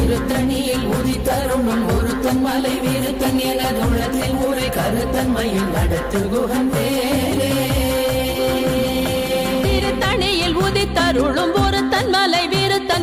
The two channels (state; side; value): identical; both; correlation 1.00